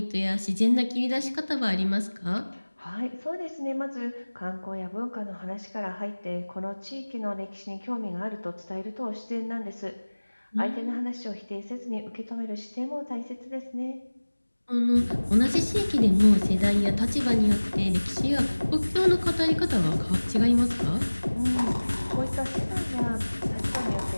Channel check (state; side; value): inverted; both; correlation -1.00